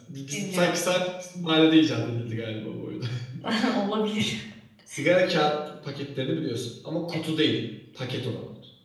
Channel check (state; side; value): identical; both; correlation 1.00